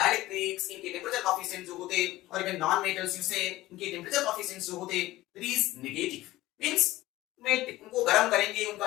इनके टेम्परेचर कोफिशिएंट जो होते, और इवन नॉन मेटल्स यूज से इनके टेम्परेचर कोफिशिएंट्स जो होते, इट इज नेगेटिव। मींस में उनको गर्म करेंगे, उनका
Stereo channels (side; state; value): right; quieter; 17.2 dB